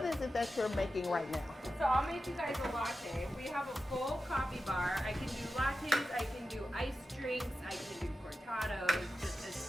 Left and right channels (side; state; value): both; normal; correlation 0.91